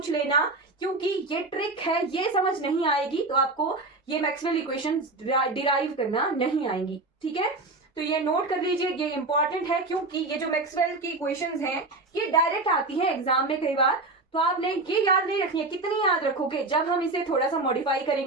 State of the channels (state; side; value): quieter; left; 3.2 dB